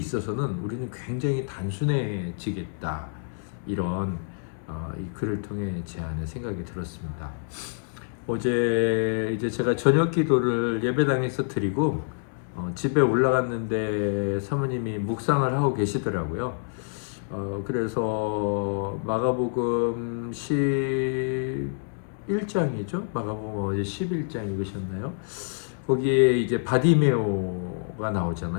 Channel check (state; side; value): silent; right; digital silence